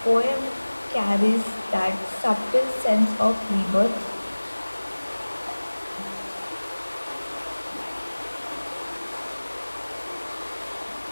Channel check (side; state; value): both; inverted; correlation -1.00